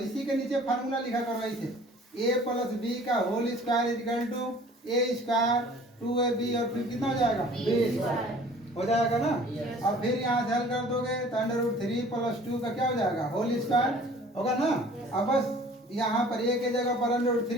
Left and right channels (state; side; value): normal; both; correlation 0.50